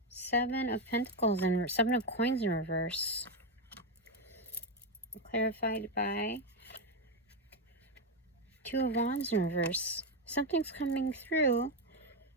7 of Pentacles and 7 of Coins in reverse. Clarified by Two of Wands in reverse. Something's coming through.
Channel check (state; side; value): normal; both; correlation 0.07